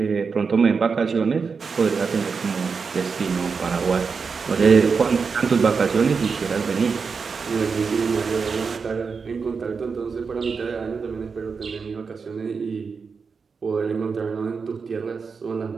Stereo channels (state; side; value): quieter; left; 5.3 dB